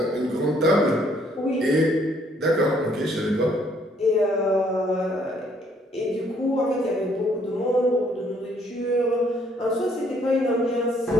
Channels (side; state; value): both; normal; correlation 0.66